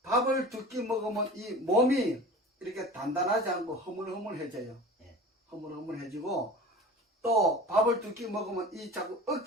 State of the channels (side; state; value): both; normal; correlation 0.38